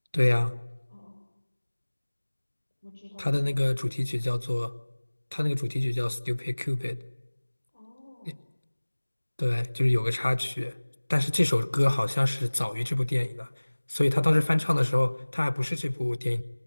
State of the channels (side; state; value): both; inverted; correlation -1.00